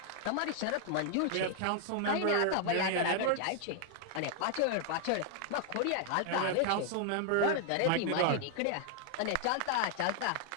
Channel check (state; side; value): different; both; correlation 0.00